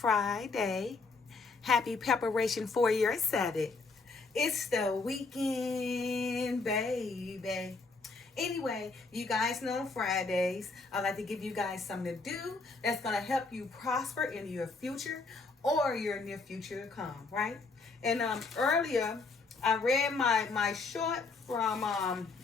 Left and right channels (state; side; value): quieter; right; 4.0 dB